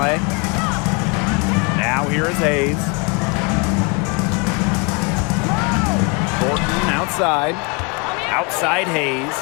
Now here is Hayes. Thornton outside. Outside Hayes.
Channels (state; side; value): quieter; right; 32.1 dB